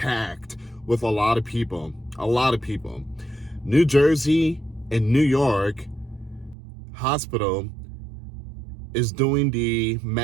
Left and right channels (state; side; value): drops out; left; at 6.6 s